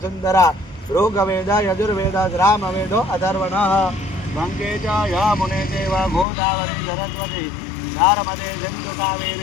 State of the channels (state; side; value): drops out; right; at 6.2 s